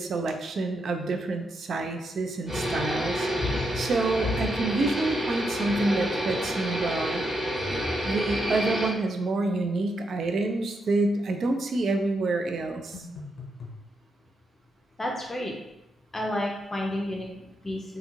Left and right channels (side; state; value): both; normal; correlation 0.82